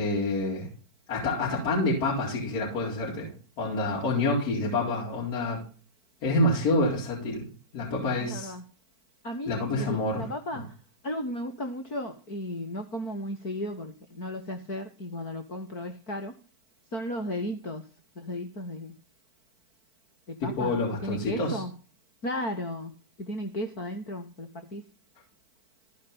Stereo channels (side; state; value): right; late; 4.5 ms